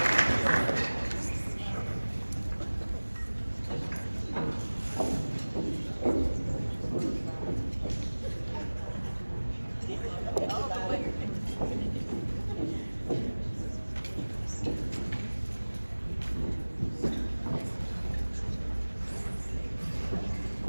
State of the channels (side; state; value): both; inverted; correlation -1.00